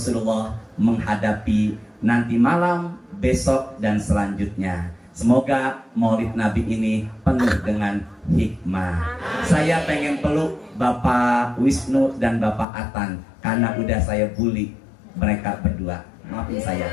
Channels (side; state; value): right; drops out; at 12.7 s